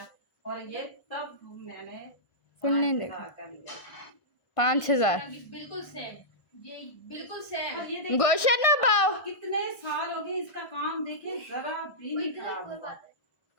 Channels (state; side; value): late; right; 1.6 ms